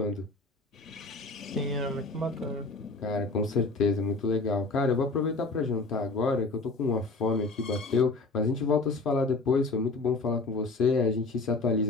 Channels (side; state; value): right; quieter; 3.6 dB